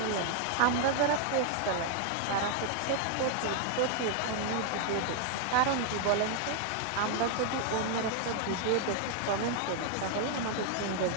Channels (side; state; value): both; different; correlation 0.00